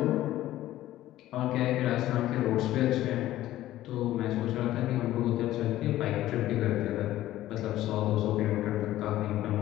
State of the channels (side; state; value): right; quieter; 14.5 dB